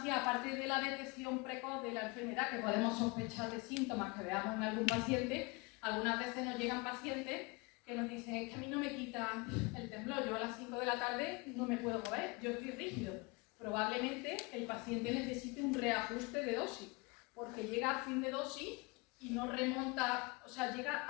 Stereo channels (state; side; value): quieter; right; 27.3 dB